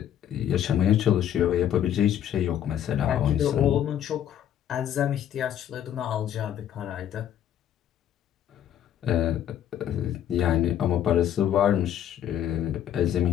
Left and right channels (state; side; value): quieter; right; 10.4 dB